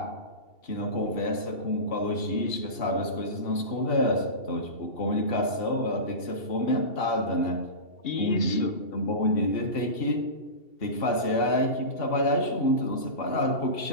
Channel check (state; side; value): late; right; 2.7 ms